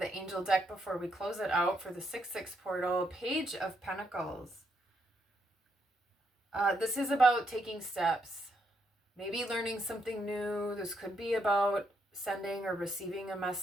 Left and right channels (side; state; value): both; normal; correlation 0.77